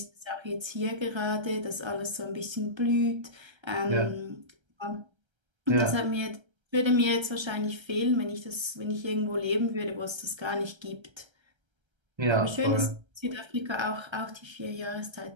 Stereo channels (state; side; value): late; left; 1.3 ms